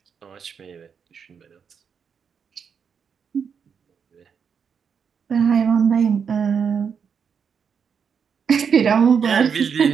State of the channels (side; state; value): left; quieter; 6.7 dB